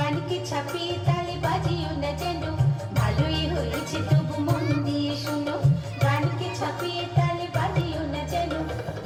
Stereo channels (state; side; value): identical; both; correlation 1.00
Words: ছাপিয়ে তালে বাজিও না যেন ভালোই হয়েছে তবু মন দিয়ে শোনো গানকে ছাপিয়ে তালে বাজিও না যেন